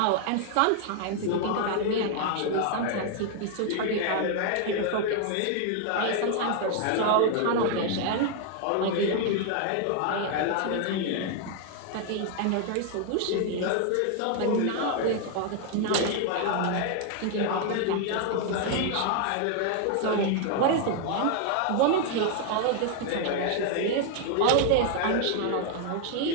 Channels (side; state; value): both; different; correlation 0.00